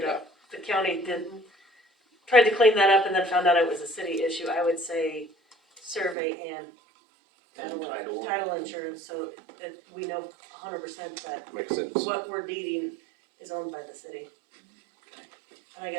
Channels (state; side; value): drops out; left; at 6.2 s